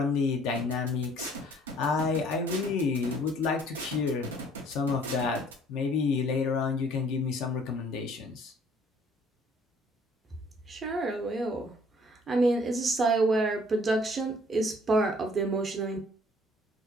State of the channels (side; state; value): both; normal; correlation 0.58